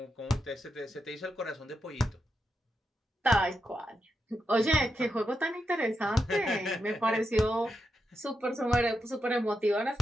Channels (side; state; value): both; normal; correlation 0.85